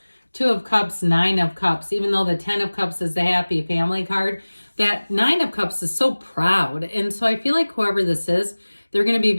Two of Cups, Nine of Cups, even though the 10 of Cups is the happy family card, that Nine of Cups is so proud. And so I feel like whoever this is, they're going to be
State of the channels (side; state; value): both; inverted; correlation -1.00